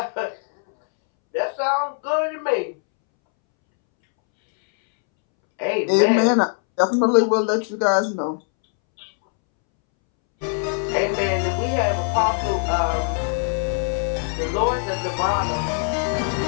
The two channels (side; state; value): right; silent; 64 dB below the other